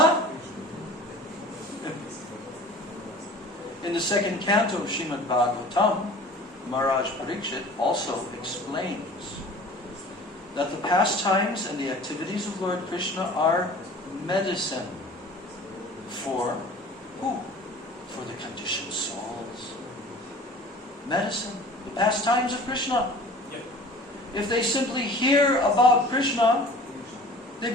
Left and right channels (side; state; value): both; normal; correlation 0.44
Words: In the 2nd canto of Srimad Bhagavatam, Maharaj Parikshit also explains that the pastimes and the activities of Lord Krishna are medicine for who? For the conditioned souls. Medicine. The pastimes of Krishna. If they simply hear about Krishna, they